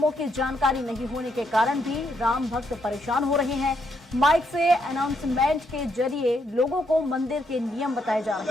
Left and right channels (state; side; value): normal; both; correlation 0.76